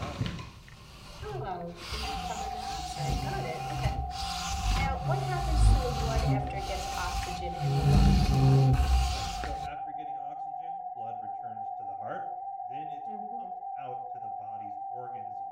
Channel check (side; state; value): both; identical; correlation 1.00